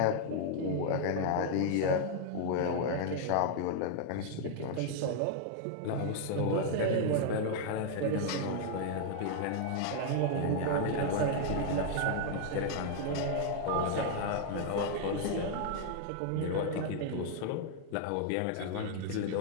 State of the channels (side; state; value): both; different; correlation -0.01